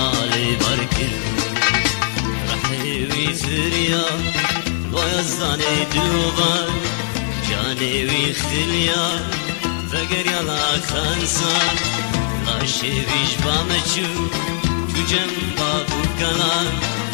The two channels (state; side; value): silent; right; 66 dB below the other